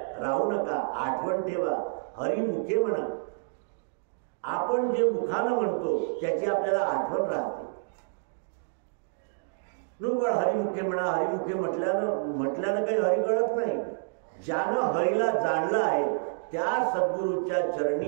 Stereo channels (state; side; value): silent; left; digital silence